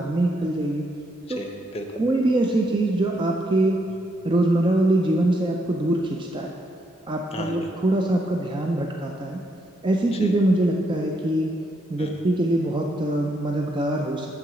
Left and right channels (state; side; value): normal; both; correlation 0.77